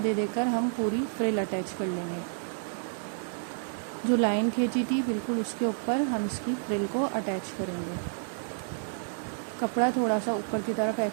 देकर हम पूरी फ्रिल अटैच कर लेंगे। जो लाइन खींची थी बिल्कुल उसके ऊपर हम इसकी फ्रिल को अटैच करेंगे। कपड़ा थोड़ा सा ऊपर की तरफ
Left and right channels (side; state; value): left; silent; digital silence